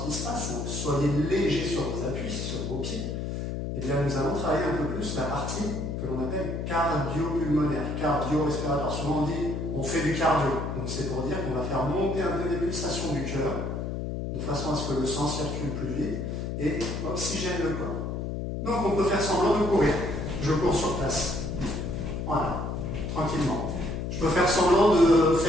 qui se passe. Donc, soyez légers sur vos appuis, sur vos pieds. Et bien, nous allons travailler un peu plus la partie que l'on appelle cardio-pulmonaire, cardio-respiratoire. Souvent on dit on fait du cardio. Donc c'est pour dire qu'on va faire monter un peu les pulsations du cœur, de façon à ce que le sang circule plus vite et oxygène le corps. Donc on peut faire semblant de courir. Je cours sur place. Voilà, tranquillement. Je peux faire semblant de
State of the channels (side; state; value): left; noise; hum, 3 dB below the sound